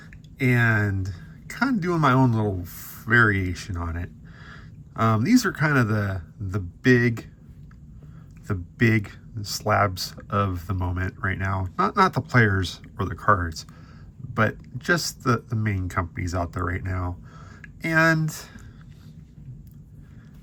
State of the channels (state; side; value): identical; both; correlation 1.00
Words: and kind of doing my own little variation on it. These are kind of the big slabs of the moment right now. Not the players or the cards, but just the main companies out there right now. And